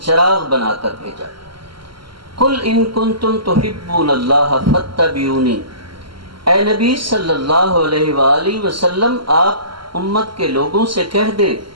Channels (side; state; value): left; late; 0.73 ms